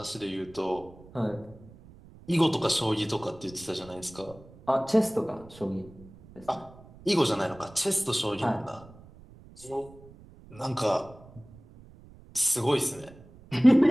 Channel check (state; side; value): noise; right; rumble, 22 dB below the sound